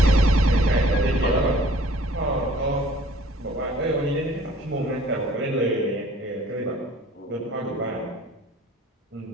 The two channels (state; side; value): normal; both; correlation 0.54